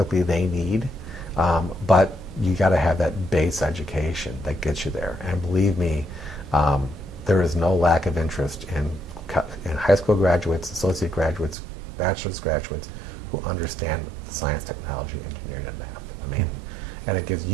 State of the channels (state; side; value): drops out; left; at 11.6 s